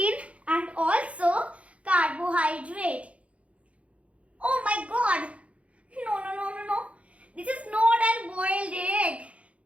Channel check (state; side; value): late; left; 0.063 ms